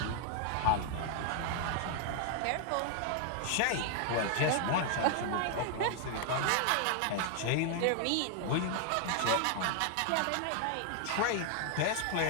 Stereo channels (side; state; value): both; different; correlation 0.00